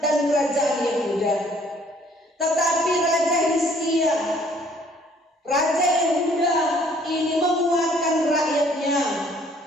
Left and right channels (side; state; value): both; normal; correlation 0.60